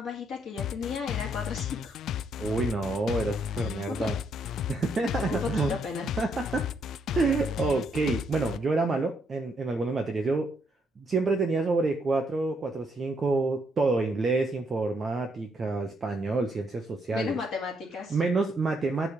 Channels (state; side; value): normal; both; correlation 0.74